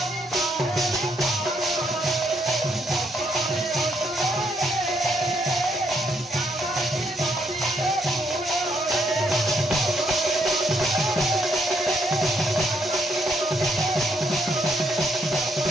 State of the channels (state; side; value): normal; both; correlation 0.74